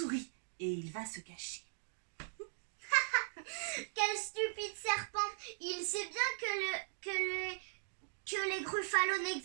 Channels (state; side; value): silent; left; digital silence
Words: Et il va se cacher. Quel stupide serpent! Il sait bien que les gruffalos